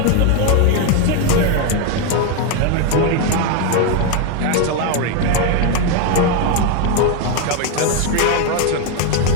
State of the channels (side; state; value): both; different; correlation 0.01